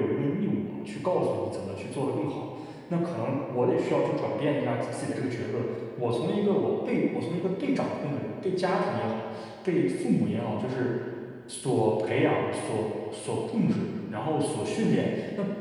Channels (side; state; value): both; identical; correlation 1.00